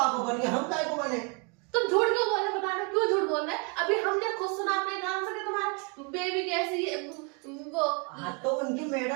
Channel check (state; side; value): quieter; left; 33.4 dB